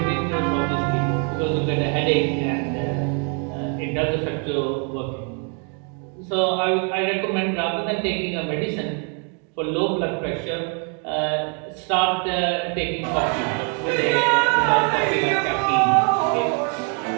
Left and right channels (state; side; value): quieter; left; 38.6 dB